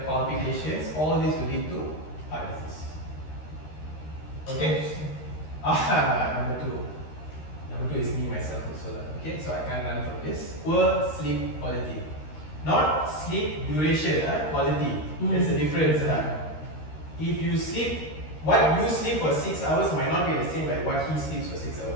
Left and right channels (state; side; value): late; right; 13 ms